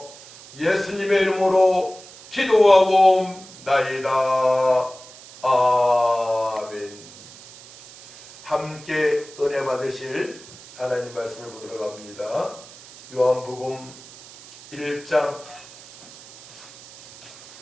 예수님의 이름으로 기도하고 나이다. 아멘. 함께 은혜 받으실 하나님 말씀을 보도록 합니다. 요한복음 1장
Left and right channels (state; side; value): noise; right; hiss, 19 dB below the sound